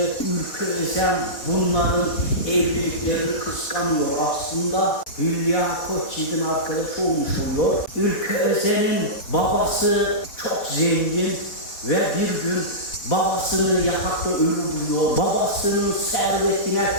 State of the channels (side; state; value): right; late; 4.2 ms